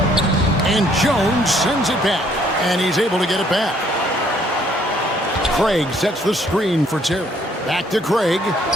And Jones sends it back, and he's able to get it back. Craig sets the screen for Terry. Back to Craig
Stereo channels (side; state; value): both; normal; correlation 0.64